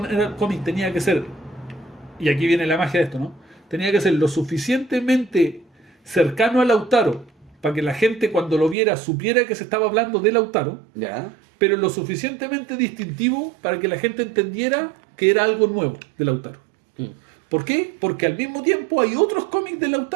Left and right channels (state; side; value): drops out; left; at 8.8 s